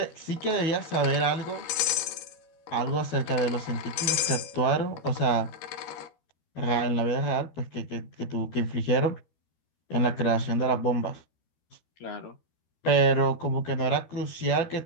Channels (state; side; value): late; right; 13 ms